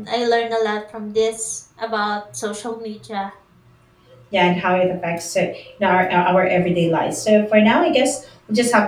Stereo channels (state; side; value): identical; both; correlation 1.00